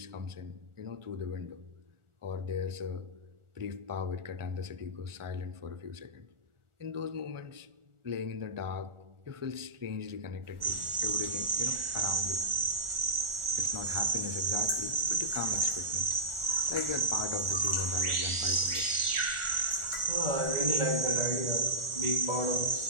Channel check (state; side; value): late; left; 1.4 ms